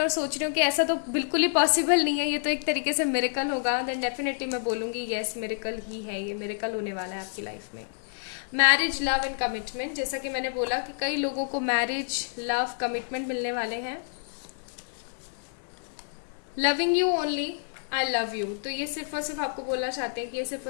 और सोच रहे हो कि ऐसा तो बिल्कुल ही पॉसिबल नहीं है, ये तो एक तरीके से मिरेकल होगा। देन डेफिनेटली मैं बोलूंगी यस, मिरेकल ही है, ये मिरेकल होने वाला है आपकी लाइफ में। मैरिज, लव एंड कमिटमेंट, जैसा कि मैंने बोला कि कई लोगों को मैरिज, लव, कमिटमेंट मिलने वाले हैं। Loving you only, I love you, तो ये सिर्फ और सिर्फ आपको बोलना चाहते हैं कि ये सिर्फ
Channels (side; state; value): right; silent; digital silence